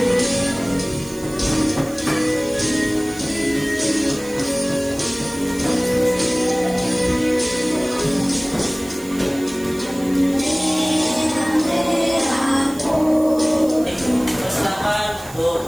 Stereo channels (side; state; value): right; noise; hiss, 18 dB below the sound